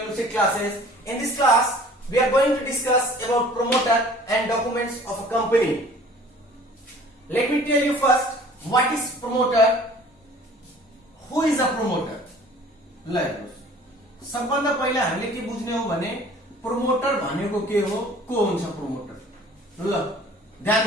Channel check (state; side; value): normal; both; correlation 0.49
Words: Lucid Classes. In this class, we are going to discuss about promoter and documents of a company. Let me tell you first, what is promoter? Who is a promoter? ल हेर्नुस्, सबभन्दा पहिला हामीले के बुझ्ने हो भने promoter भनेको के हो, को हुन्छ प्रोमोटर? ल ध्यान